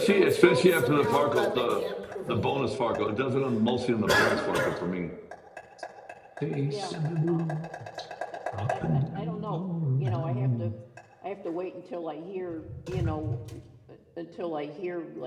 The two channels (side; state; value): both; identical; correlation 1.00